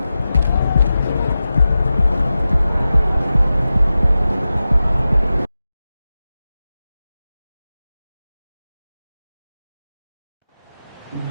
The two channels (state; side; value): inverted; both; correlation -0.94